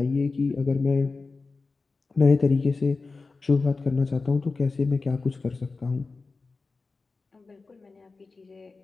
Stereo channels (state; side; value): quieter; right; 4.0 dB